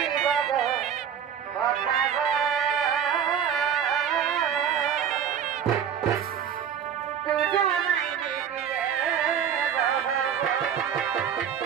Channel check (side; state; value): left; quieter; 8.4 dB